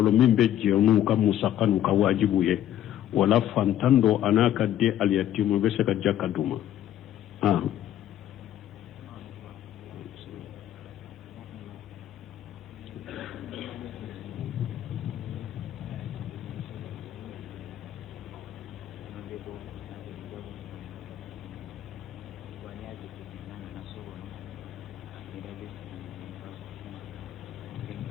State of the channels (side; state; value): right; quieter; 11.7 dB